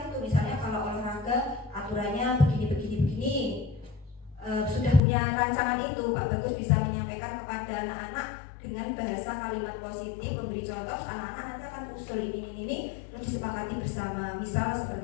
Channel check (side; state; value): right; drops out; at 5.0 s